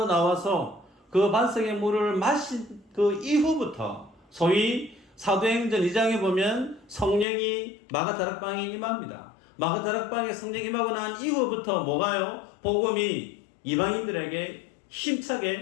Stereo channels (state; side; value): drops out; right; at 7.2 s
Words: 나와서 그 반석의 물을 마신 그 이후부터, 소위 사도행전 2장에 보면 성령이 마가다락방에 임합니다. 마가다락방에 성령이 임하고 난 이후부터 뭐가요? 복음이 이방인들에게